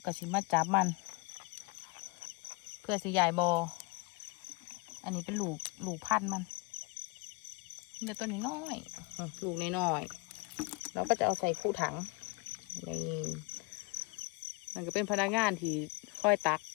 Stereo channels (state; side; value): quieter; right; 26.5 dB